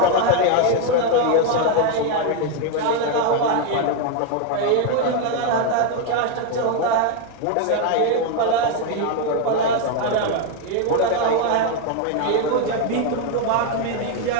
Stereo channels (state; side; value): different; both; correlation 0.01